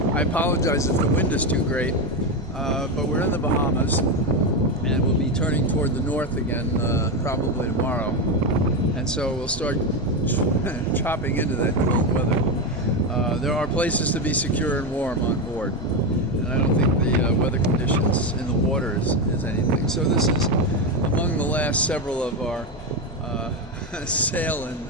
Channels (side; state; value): both; normal; correlation 0.12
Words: I apologize if the wind is too great, but we're in the Bahamas and we'll be turning toward the north again probably tomorrow. And so we'll start chopping into that cold weather. There are places to be secure and warm on board, and I don't think the weather conditions in the water is anything. So this is among the last several of our sail